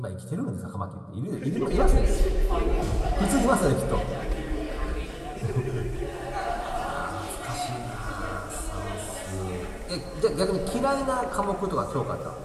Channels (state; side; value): identical; both; correlation 1.00